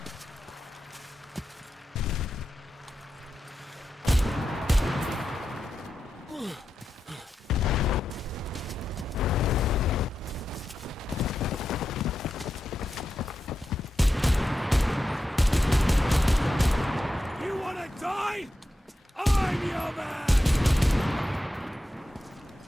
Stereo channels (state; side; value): normal; both; correlation 0.89